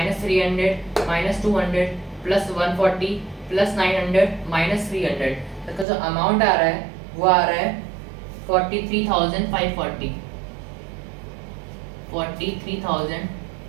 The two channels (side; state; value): left; drops out; at 5.9 s